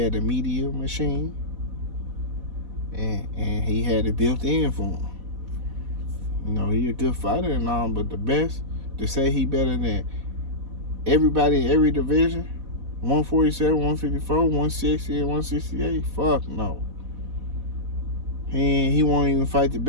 a media machine. And he had it built in for him. You know, he a good fighter and all, but the best, to say he better than everybody in every division, 147, 154, 160, and 168, fuck no. He won't even fight the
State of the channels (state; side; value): late; left; 4.1 ms